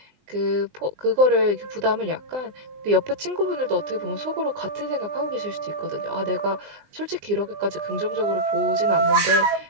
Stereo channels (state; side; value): late; left; 20 ms